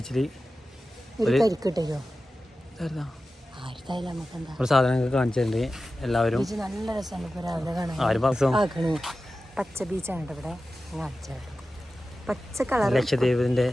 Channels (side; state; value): both; normal; correlation 0.94